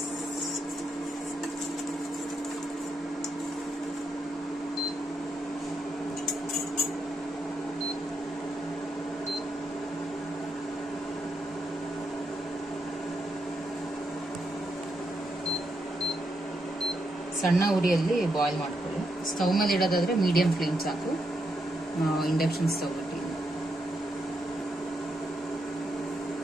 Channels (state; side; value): normal; both; correlation 0.81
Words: ಸಣ್ಣ ಉರಿಯಲ್ಲಿ ಬಾಯ್ಲ್ ಮಾಡ್ಕೊಳ್ಳಿ. ಸ್ಟವ್ ಮೇಲೆ ಇಡೋದಾದ್ರೆ ಮೀಡಿಯಂ ಫ್ಲೇಮ್ ಸಾಕು. ಇಂಡಕ್ಷನ್ ಸ್ಟವ್ ಇಟ್ಟು